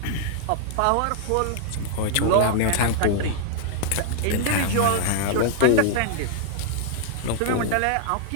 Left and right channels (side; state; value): both; different; correlation -0.01